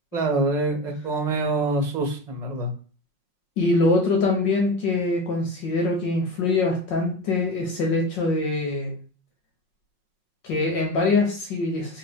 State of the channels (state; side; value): late; right; 5.5 ms